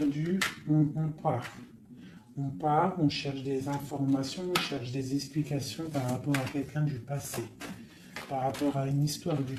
on part. On part, on cherche des informations, on cherche des explications par rapport à quelqu'un du passé, par rapport à une histoire du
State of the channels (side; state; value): both; identical; correlation 1.00